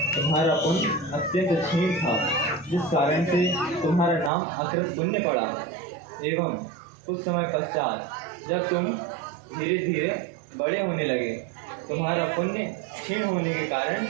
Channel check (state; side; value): drops out; left; at 4.3 s